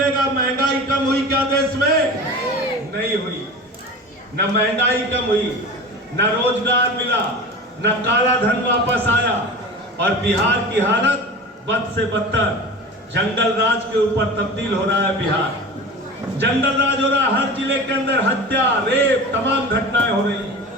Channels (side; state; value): both; normal; correlation 0.34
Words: महंगाई कम हुई क्या देश में? नहीं हुई। न महंगाई कम हुई, न रोजगार मिला, न काला धन वापस आया। और बिहार की हालत बद से बदतर, जंगल राज के ऊपर तब्दील हो रहा है बिहार। जंगल राज हो रहा है, हर जिले के अंदर हत्या, रेप, तमाम घटनाएं हो रही।